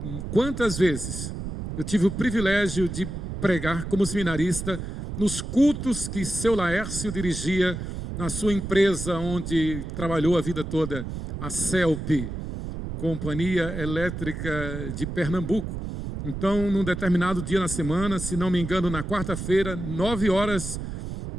Quantas vezes eu tive o privilégio de pregar como seminarista nos cultos que seu Laércio dirigia na sua empresa onde trabalhou a vida toda, a CELP, Companhia Elétrica de Pernambuco. Então, num determinado dia na semana, se não me engano, na quarta-feira, 9 horas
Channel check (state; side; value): noise; right; rumble, 6 dB below the sound